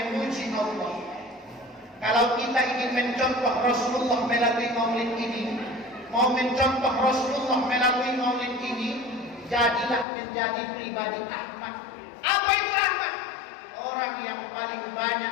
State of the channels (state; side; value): drops out; right; at 10.1 s